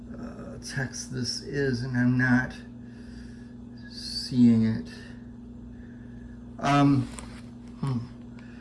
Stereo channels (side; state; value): both; identical; correlation 1.00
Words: text this is, and I'm not seeing it.